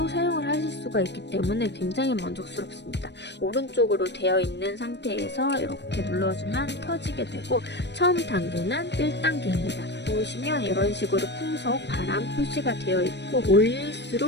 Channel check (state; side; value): late; right; 0.50 ms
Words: 사용을 하실 수가 있기 때문에 굉장히 만족스럽습니다. 오른쪽으로 되어 있는 상태에서 이렇게 눌러주면 켜지게 되고 처음 단계는 1단계입니다. 보시면 이런 식으로 풍속, 바람 표시가 되어 있고